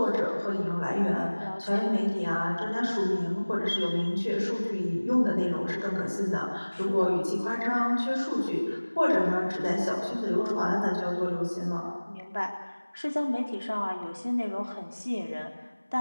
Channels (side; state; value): both; inverted; correlation -1.00